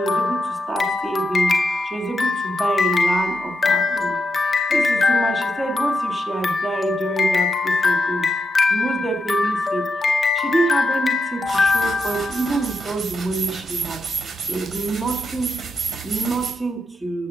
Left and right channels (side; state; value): both; normal; correlation 0.84